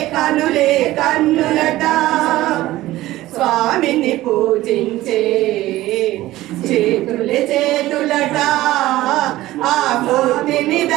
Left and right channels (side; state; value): left; quieter; 16.4 dB